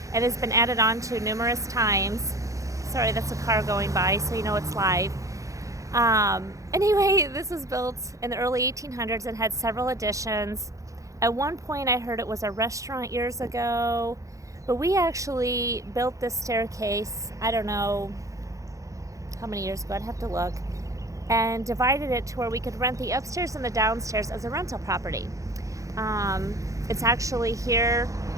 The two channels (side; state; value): left; late; 0.16 ms